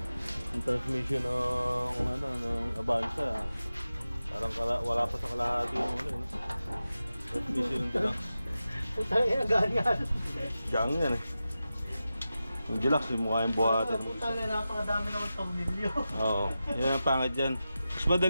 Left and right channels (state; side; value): inverted; both; correlation -0.93